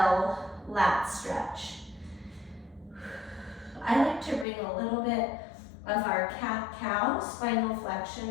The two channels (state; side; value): drops out; right; at 4.5 s